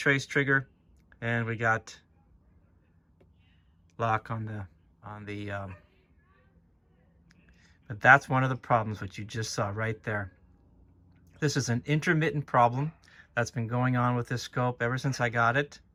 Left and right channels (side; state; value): both; identical; correlation 1.00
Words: trigger, and we got lock on the but that's one of the problems which you just saw right there. This is an intermittent problem that's been going on with this scope ever since I got it.